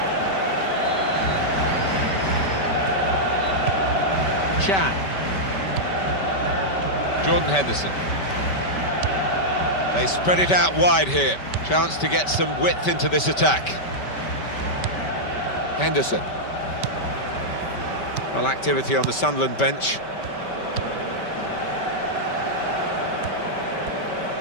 Chan. Jordan Henderson. They spread it out wide here. Chance to get some width into this attack. Henderson. Well, activity on the Sunderland bench.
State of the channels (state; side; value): late; right; 5.2 ms